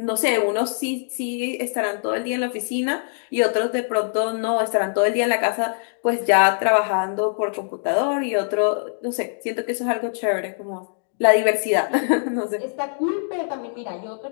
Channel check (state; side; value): silent; right; digital silence